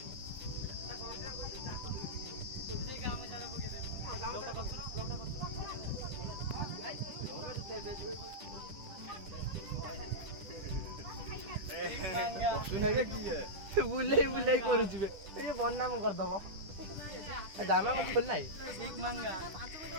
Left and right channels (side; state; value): left; late; 10 ms